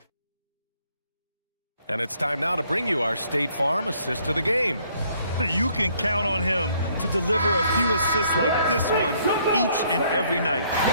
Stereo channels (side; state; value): both; inverted; correlation -0.66